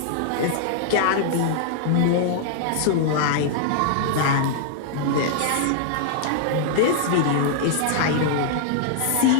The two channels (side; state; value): both; different; correlation -0.01